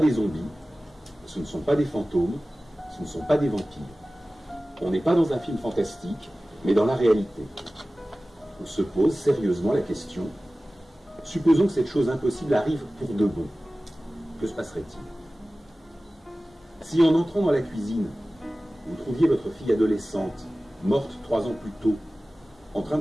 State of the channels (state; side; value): normal; both; correlation 0.97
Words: zombies, ce ne sont pas des fantômes, ce ne sont pas des vampires. On n'est pas dans un film fantastique, mais dans la réalité. On se pose sérieusement la question, supposons que cette chose impossible arrive pour de bon. Que se passerait-il? Si en entrant dans la cuisine, vous trouviez votre fille adolescente, morte 3 ans plus tôt, en train